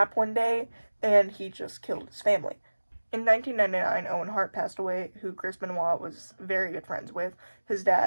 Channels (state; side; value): inverted; both; correlation -1.00